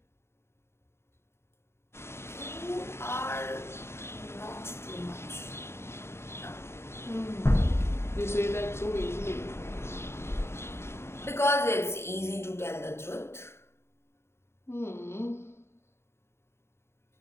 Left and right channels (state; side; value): late; right; 0.12 ms